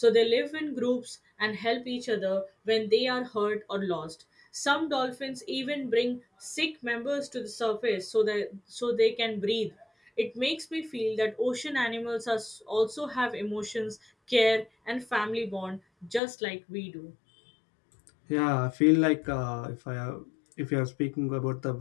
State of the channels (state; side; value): drops out; right; at 16.2 s